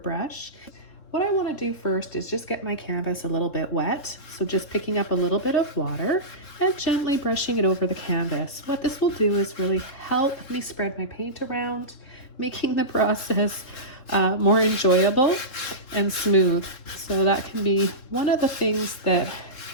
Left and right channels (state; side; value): late; right; 3.6 ms